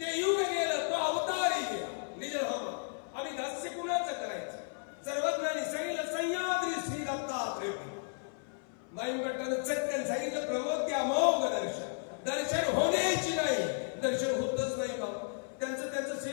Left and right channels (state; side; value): silent; right; 55 dB below the other